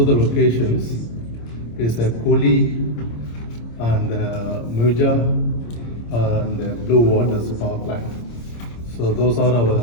the locations. Is a Koli and Muja and Blue Waters power plant. So those are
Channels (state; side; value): late; right; 26 ms